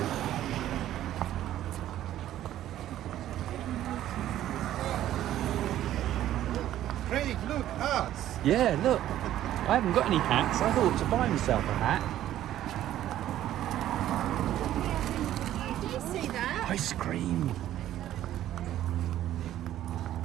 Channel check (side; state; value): left; quieter; 12.6 dB